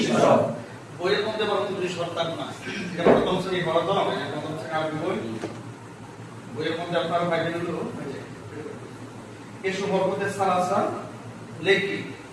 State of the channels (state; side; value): identical; both; correlation 1.00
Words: হরফ। বইয়ের মধ্যে বরং 29 হরফ থাকবে না। এটা প্রথম শ্রেণী হরফ দাও, এটা প্রথম শ্রেণী আরবি বই। বইয়ের মধ্যে আপনারা পাইবেন হলো এসব হরকতে সালাসা লেখি,